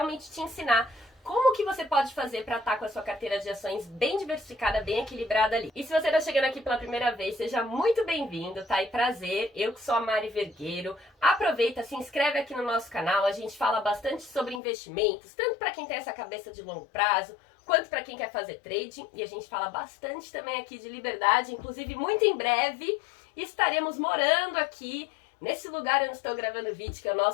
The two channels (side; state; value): right; drops out; at 14.6 s